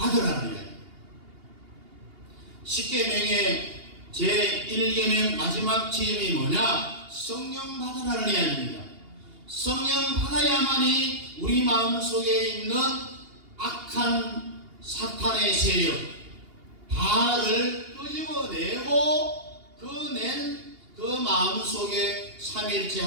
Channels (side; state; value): left; late; 2.8 ms